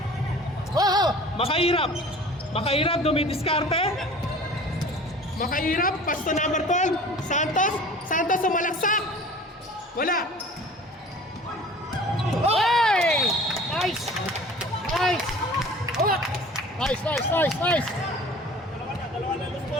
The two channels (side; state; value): both; normal; correlation 0.44